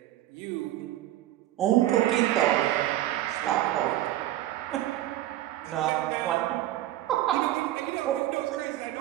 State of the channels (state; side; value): quieter; left; 14.4 dB